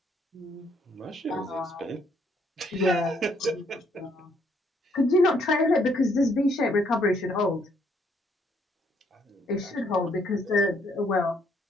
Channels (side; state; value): both; normal; correlation 0.69